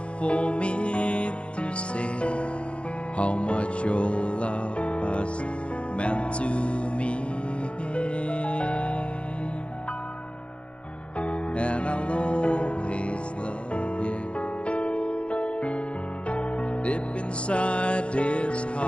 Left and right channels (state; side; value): late; right; 0.059 ms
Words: for me to say how much your love has meant to me. And I'll always love you. Deep inside this